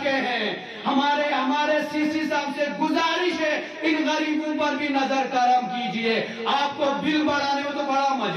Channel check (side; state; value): both; identical; correlation 1.00